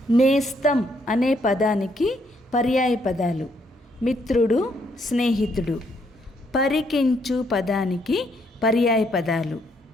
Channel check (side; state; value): both; normal; correlation 0.72